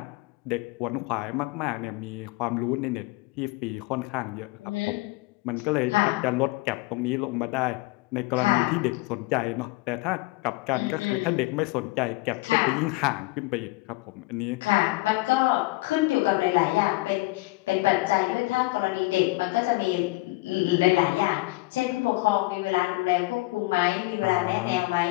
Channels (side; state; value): right; quieter; 22.3 dB